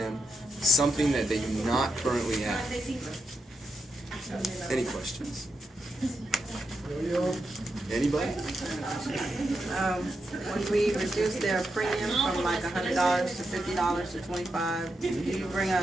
something that they do not currently have. Any questions? Anybody? When we reduce their premium from like $100 to $50 to $25, do you bring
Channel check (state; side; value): normal; both; correlation 0.84